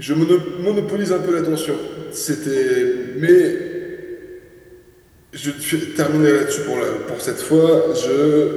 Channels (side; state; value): both; identical; correlation 1.00